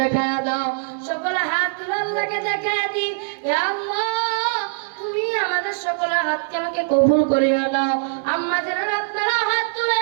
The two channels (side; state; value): left; silent; digital silence